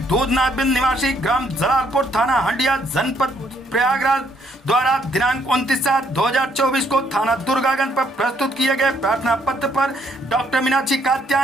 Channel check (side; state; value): both; normal; correlation 0.69